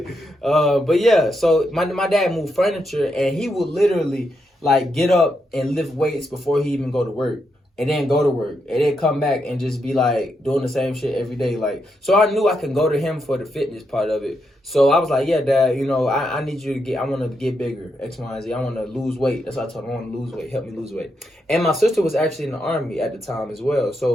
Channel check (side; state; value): both; normal; correlation 0.81